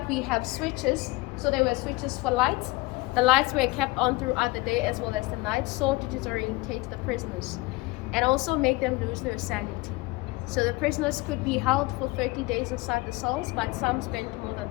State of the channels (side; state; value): right; quieter; 22.9 dB